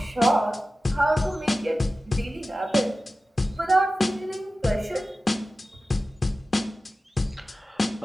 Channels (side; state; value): both; normal; correlation 0.95